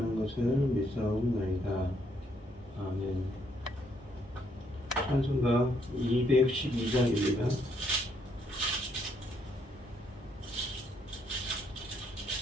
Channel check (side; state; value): both; normal; correlation 0.72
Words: 것을 믿사옵나이다. 아멘. 찬송가 212장입니다.